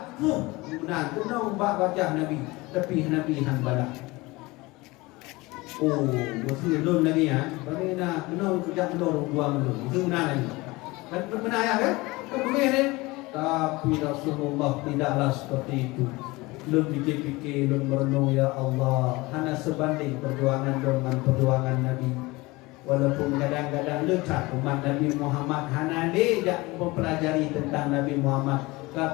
Benar, benar umbak wajah Nabi, tapi Nabi hanbala. Oh, Musa belum lagi ya. Bagaimana benar kerja benar buang dulu. Itu benar lagi. Dan benar ya kan? Kemudian tapi Rasulullah tidaklah seperti itu. Belum fikir-fikir, belum merenung ya Allah. Hanya sebanding perjuangan dengan perjuangan Nabi. Walaupun kadang-kadang lekat umat Nabi Muhammad hanya dia mempelajari tentang Nabi Muhammad.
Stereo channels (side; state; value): right; quieter; 22.2 dB